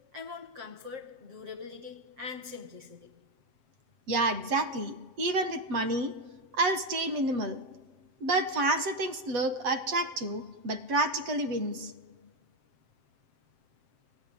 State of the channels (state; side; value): late; left; 7.6 ms